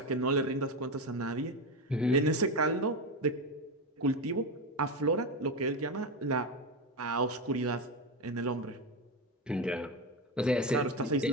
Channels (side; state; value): both; normal; correlation 0.14